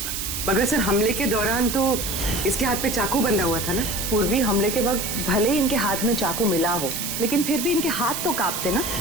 मगर सर हमले के दौरान तो इसके हाथ पे चाकू बंधा हुआ था ना। पूर्वी हमले के वक्त भले ही इनके हाथ में चाकू मिला हो, लेकिन फिर भी इनके हाथ तो कांपते ना,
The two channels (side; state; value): right; noise; hiss, 4 dB below the sound